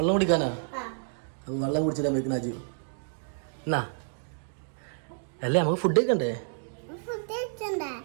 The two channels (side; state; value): left; silent; digital silence